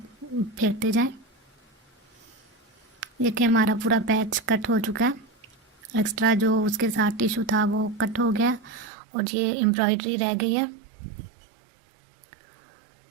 फेरते जाएं। देखिए हमारा पूरा पैच कट हो चुका है, एक्स्ट्रा जो उसके साथ टिश्यू था वो कट हो गया और ये एम्ब्रॉयडरी रह गई है।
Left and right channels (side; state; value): left; drops out; at 8.9 s